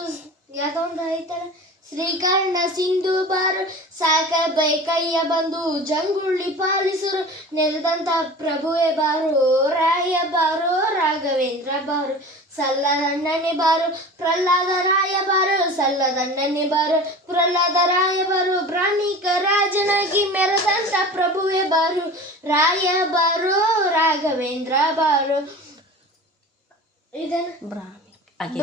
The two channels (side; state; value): both; normal; correlation 0.37